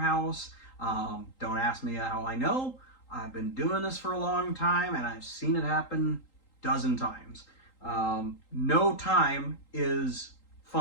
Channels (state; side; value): late; right; 3.8 ms